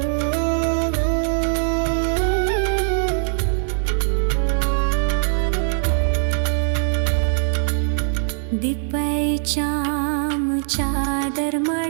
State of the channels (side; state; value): left; silent; digital silence